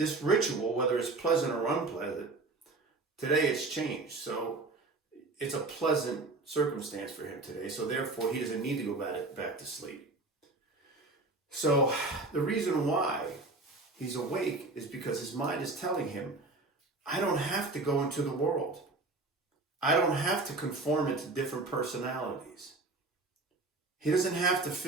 ritual, whether it's pleasant or unpleasant, today it's changed. So it's a pleasant circumstance for him today. So therefore, he doesn't need to go back to sleep. So the reason why he's awake is because his mind is telling him, I don't have to go into the world. I don't have to conform into different personalities. He doesn't have to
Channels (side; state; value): left; quieter; 3.3 dB